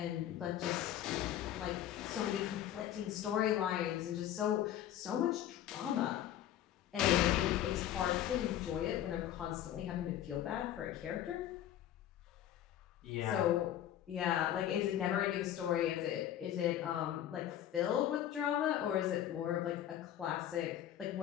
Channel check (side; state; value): right; quieter; 11.5 dB